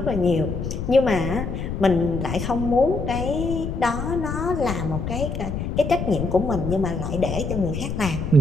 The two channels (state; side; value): noise; left; rumble, 4 dB below the sound